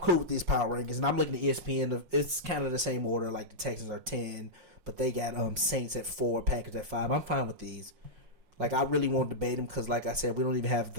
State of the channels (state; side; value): late; left; 5.6 ms